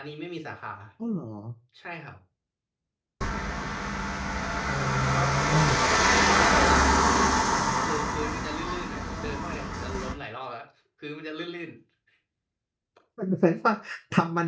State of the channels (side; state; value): both; identical; correlation 1.00